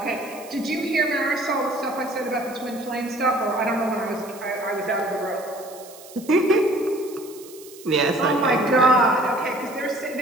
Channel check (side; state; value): right; noise; hiss, 19 dB below the sound